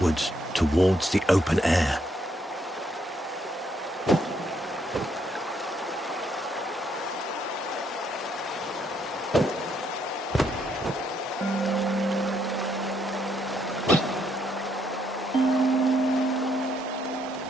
towards the open air.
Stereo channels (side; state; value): both; normal; correlation 0.73